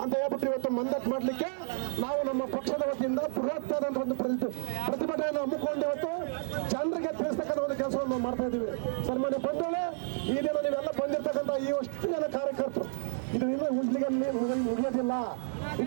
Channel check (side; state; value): left; silent; 57 dB below the other